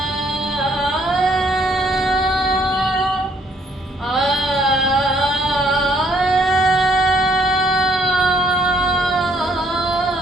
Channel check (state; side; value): normal; both; correlation 0.67